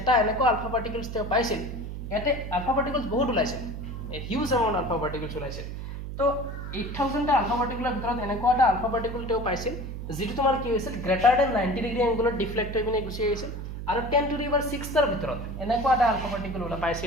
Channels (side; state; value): right; noise; hum, 7 dB below the sound